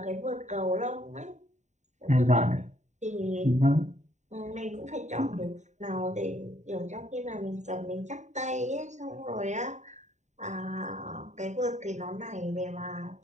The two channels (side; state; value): left; late; 0.34 ms